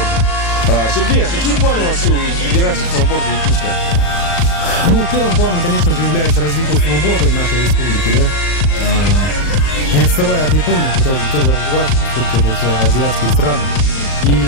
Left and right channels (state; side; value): late; right; 37 ms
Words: Сергей, а какие планы вообще у Федерации сноуборда Якутска? Ну, первым планом, конечно же, является развитие сноуборда в нашей республике, да. Не отставая от Японии, хотелось бы тоже развиваться, поскольку это все азиатские страны. И